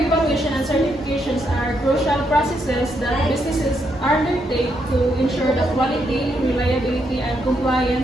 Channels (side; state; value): both; normal; correlation 0.78